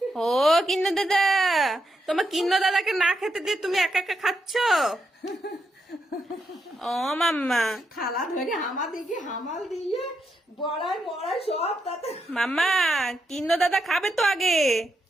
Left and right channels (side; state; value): both; normal; correlation 0.82